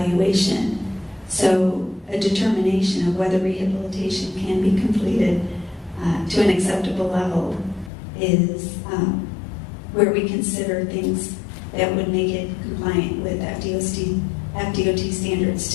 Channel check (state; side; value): drops out; right; at 7.9 s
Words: So a determination of whether rehabilitation can be completed to an acceptable level is where we consider things that would make it compliant with FDOT standards